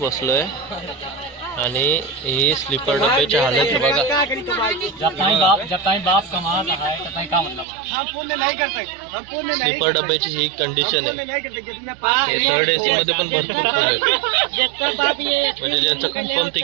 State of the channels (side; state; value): left; drops out; at 7.7 s